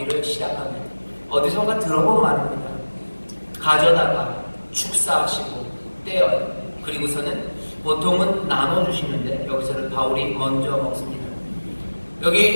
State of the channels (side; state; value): both; inverted; correlation -1.00